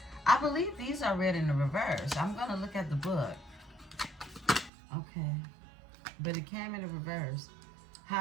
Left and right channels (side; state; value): left; drops out; at 4.7 s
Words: I believe these are read in the reverse. I'm going to look at the book. Okay. But it came in the reverse.